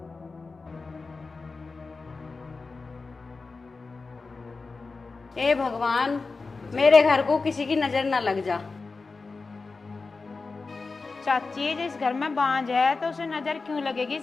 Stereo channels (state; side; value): quieter; right; 4.1 dB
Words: ए भगवान, मेरे घर को किसी की नजर ना लग जा। चाची जिस घर में बांझ है तो उसे नजर क्यों लगेगी